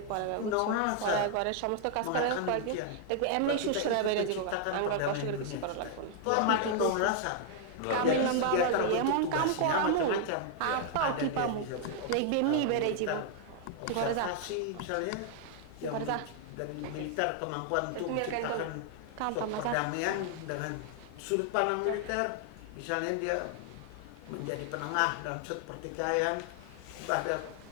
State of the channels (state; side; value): different; both; correlation 0.00